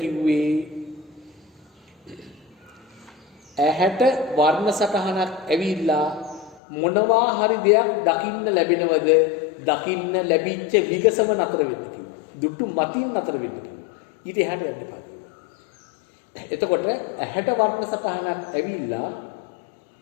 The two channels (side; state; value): right; drops out; at 6.6 s